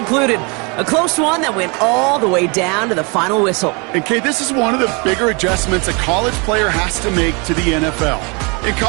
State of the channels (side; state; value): left; quieter; 31.2 dB